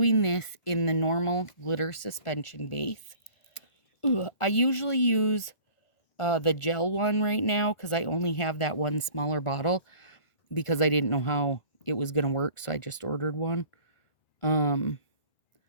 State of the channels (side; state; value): right; late; 1.5 ms